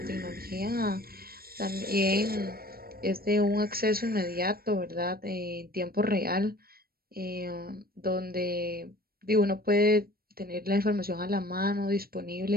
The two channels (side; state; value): left; late; 0.44 ms